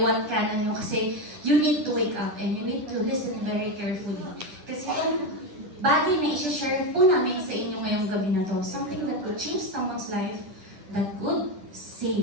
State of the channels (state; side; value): late; left; 10 ms